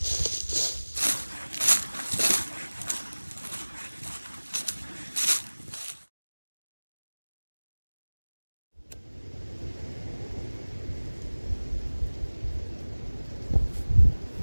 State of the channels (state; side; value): inverted; both; correlation -1.00